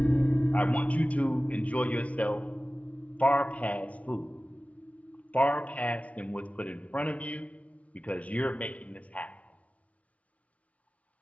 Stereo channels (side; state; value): right; late; 0.066 ms